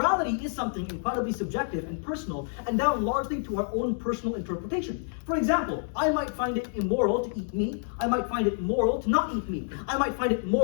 is something incredibly subjective and personal, and down largely to our own personal interpretation. For example, I might find it immoral to eat meat. I might find it moral to not eat meat. I might find it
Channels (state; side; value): silent; right; digital silence